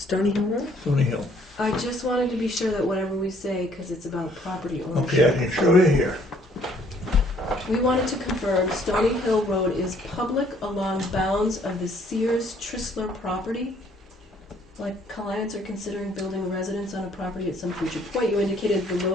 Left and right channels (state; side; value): normal; both; correlation 0.63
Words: Hill Road? Stony Hill. I just wanted to be sure that whatever we say, because it's about property Okay, I ownership. can show you here. We wanted to confirm Stony Hill Road is public along bounds of the Sears Tristler property. Like clients are considering building a residence on a property at some future point. You indicated the